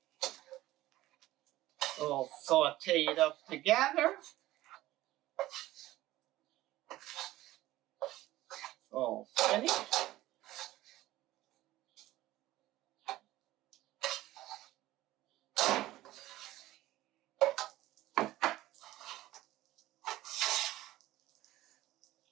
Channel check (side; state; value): left; quieter; 16.3 dB